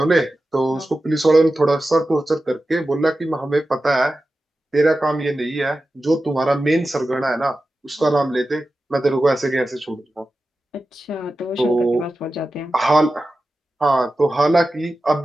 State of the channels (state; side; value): normal; both; correlation 0.93